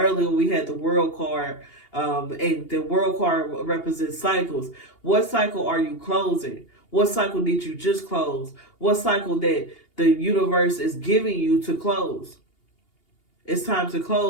we had the world card, and the world card represents cycles. What cycle are you closing? What cycle did you just close? What cycle that the universe is giving you to close? It's time to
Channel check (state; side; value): late; right; 2.8 ms